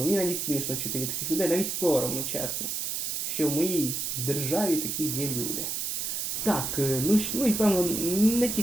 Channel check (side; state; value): right; noise; hiss, 2 dB below the sound